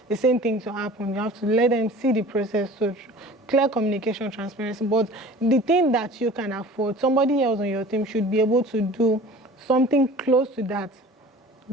the same thing to happen. You have to let them see the process. So clear communication, transparency. But the thing that you can afford, somebody else on your team should be able to do something close to that.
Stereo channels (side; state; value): both; normal; correlation 0.43